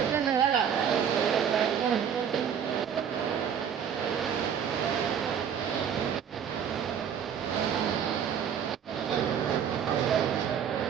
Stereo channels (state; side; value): quieter; left; 8.2 dB